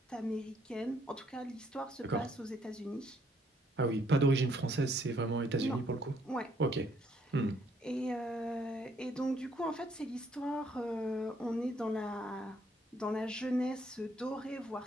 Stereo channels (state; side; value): normal; both; correlation 0.69